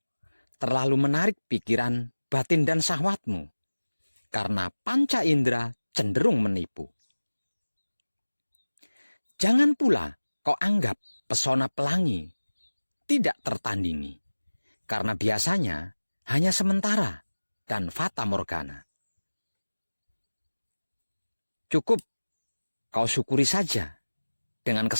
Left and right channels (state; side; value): inverted; both; correlation -1.00